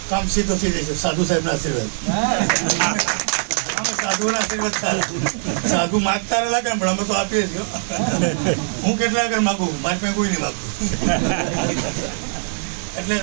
કામ સીધો થઈ જશે. સાધુ સાહેબના આશીર્વાદ. સાધુના આશીર્વાદ સારા. સાધુ માગતા લાગે પણ અમે તો આપીએ છીએ. હું કેટલા આગળ માગું, મારી પાસે કોઈ નહીં માગતું. એટલે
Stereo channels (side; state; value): left; silent; digital silence